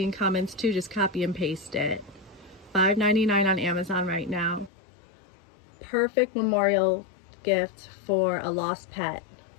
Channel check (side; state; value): right; drops out; at 4.7 s